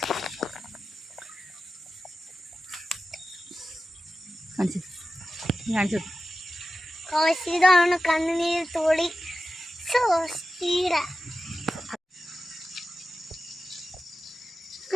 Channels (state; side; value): normal; both; correlation 0.93